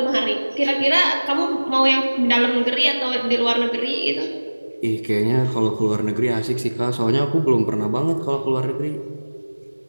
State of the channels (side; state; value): both; inverted; correlation -1.00